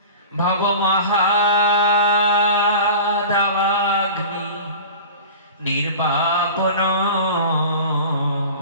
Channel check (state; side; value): inverted; both; correlation -0.36